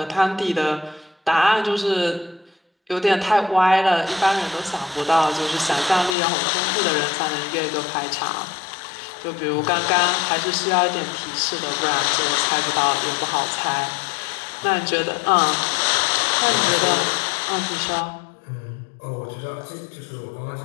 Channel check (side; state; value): right; drops out; at 6.2 s